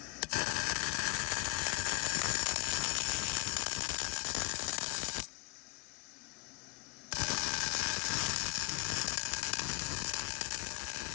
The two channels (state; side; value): quieter; right; 28.3 dB